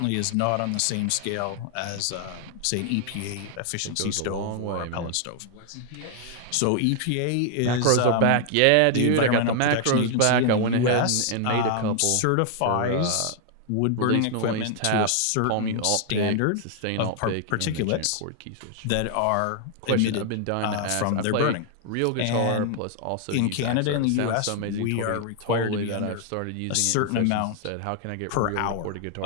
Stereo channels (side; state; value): both; different; correlation 0.00